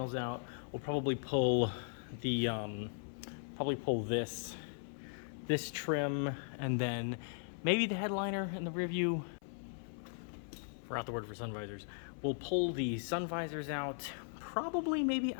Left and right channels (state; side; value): silent; right; 52 dB below the other